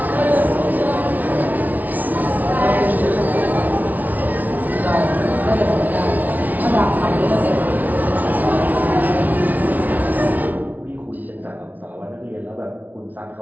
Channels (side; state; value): left; late; 0.077 ms